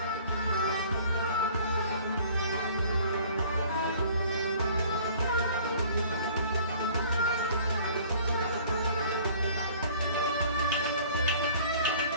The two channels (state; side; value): inverted; both; correlation -0.51